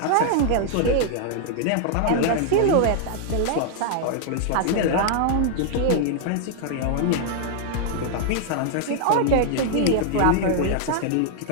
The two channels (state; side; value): different; both; correlation 0.00